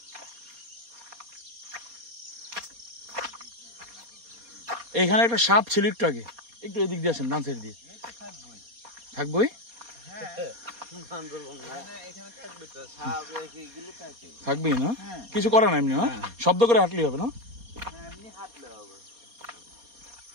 এখানে একটা সাপ ছিল একটু আগে, একটু এদিক দিয়ে আসেন, ডান সাইড দিয়ে। থাকবোই, থাকবেই না, কিছু করে না এমনি না, শব্দ করে হাঁটলেই হবে না।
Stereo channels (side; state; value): left; late; 4.2 ms